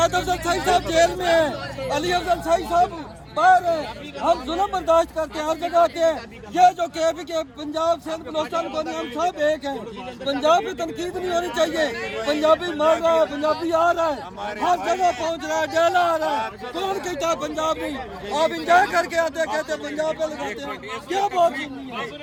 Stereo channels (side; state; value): both; identical; correlation 1.00